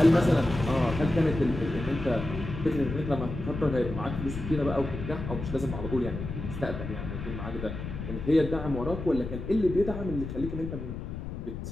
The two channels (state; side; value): noise; left; rumble, 7 dB below the sound